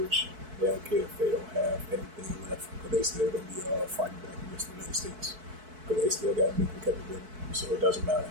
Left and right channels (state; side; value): late; left; 4.6 ms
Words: They don't care if they don't have anything left, because they still going to be fighting back against the United States, because they still got nuclear capability. So it doesn't matter